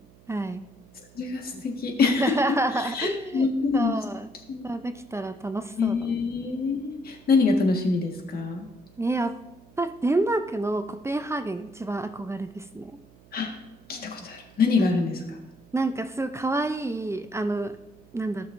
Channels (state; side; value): noise; right; hum, 25 dB below the sound